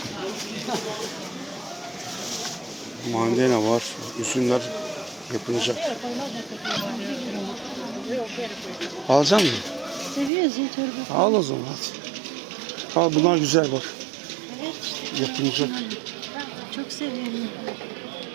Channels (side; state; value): left; drops out; at 10.3 s